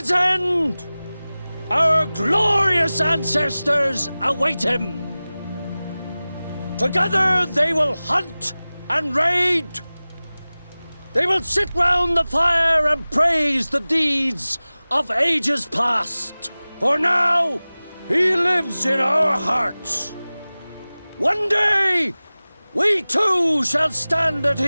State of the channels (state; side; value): inverted; both; correlation -0.98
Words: end, our glorious ancestors await him. Together they will hunt and raid. They will sit round the fire and praise the deeds of ages past. For now, he lives in our hearts. One day, we too shall stand at